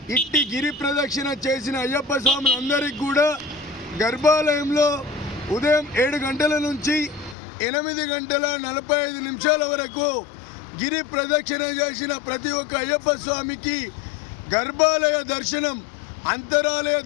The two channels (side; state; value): right; drops out; at 7.4 s